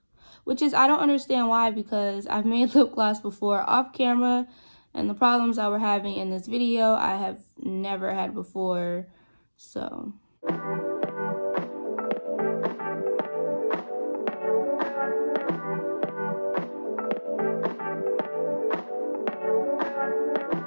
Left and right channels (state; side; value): inverted; both; correlation -1.00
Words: Which is, I don't understand why, because I've made lip gloss before off camera, and the problems I were having in this video, I have never had before, so.